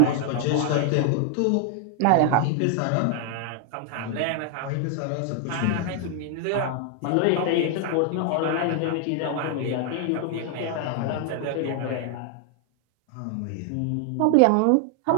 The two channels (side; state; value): both; different; correlation 0.00